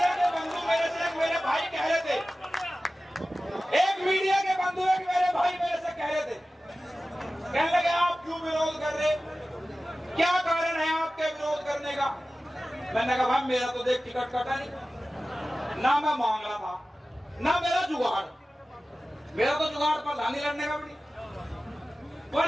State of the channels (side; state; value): both; normal; correlation 0.96